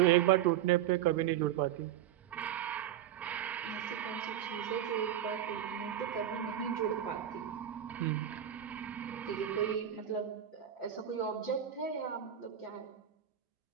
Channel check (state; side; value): quieter; left; 10.8 dB